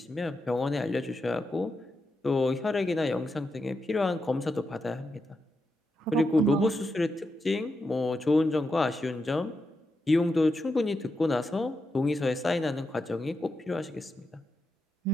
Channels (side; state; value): both; normal; correlation 0.86